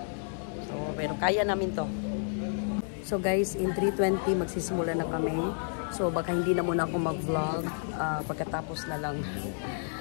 So, pero kaya namin to. So, guys, in 3:20, magsisimula na kami. So, baka hindi na muna ako mag-vlog. Pagkatapos na lang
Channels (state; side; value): silent; right; 57 dB below the other